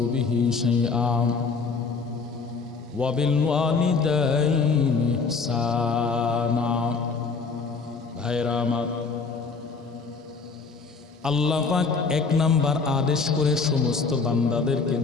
বিহি শাইআন ওয়া বিল ওয়ালিদাইনি ইহসানা। ভাইরা আমার, আল্লাহ পাক এক নাম্বার আদেশ করে সমস্ত বান্দাদেরকে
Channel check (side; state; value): right; quieter; 4.6 dB